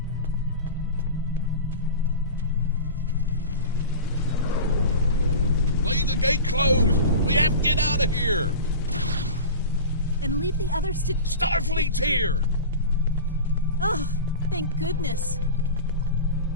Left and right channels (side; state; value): both; inverted; correlation -0.31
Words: Leave the gate closed! We have to get out of here! And leave the others to... Starfleet's here! Oh, thank goodness.